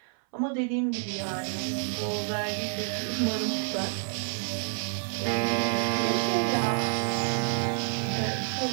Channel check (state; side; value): silent; left; 59 dB below the other